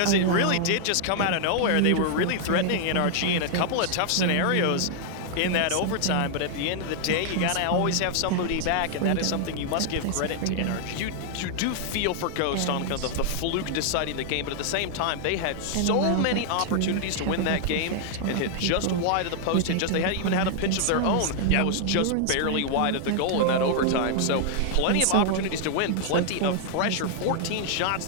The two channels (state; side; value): different; both; correlation 0.00